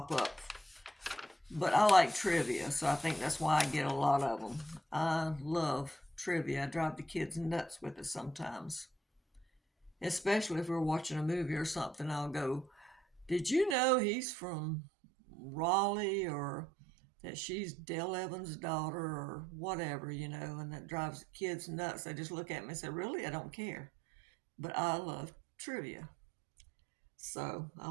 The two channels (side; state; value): left; drops out; at 13.8 s